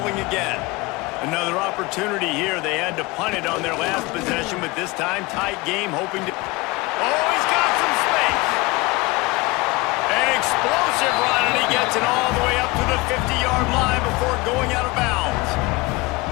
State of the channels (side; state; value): right; quieter; 23.3 dB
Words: again. Another opportunity here. They had to punt it on their last possession, but this time tight game, hoping to... Oh, he's got some space! An explosive run, and he gets it all the way up to the 50-yard line before going out of bounds.